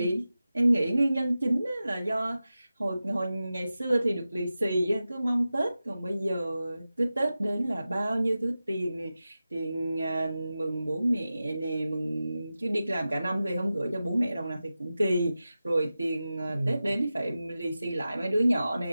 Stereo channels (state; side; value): inverted; both; correlation -0.94